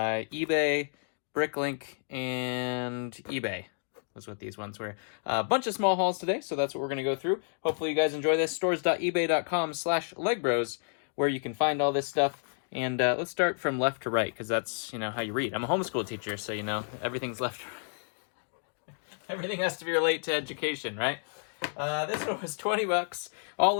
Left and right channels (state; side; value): silent; right; digital silence